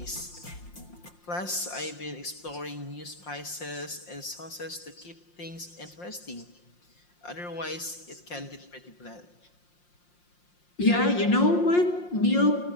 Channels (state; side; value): late; right; 5.7 ms